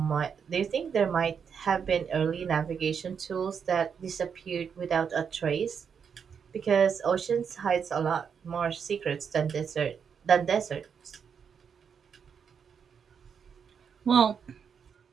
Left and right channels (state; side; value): quieter; left; 6.9 dB